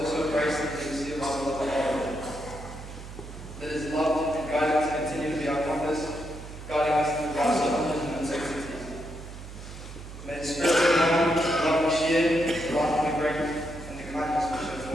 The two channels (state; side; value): noise; right; hum, 12 dB below the sound